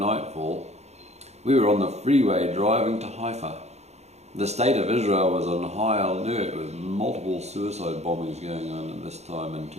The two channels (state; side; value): late; left; 0.32 ms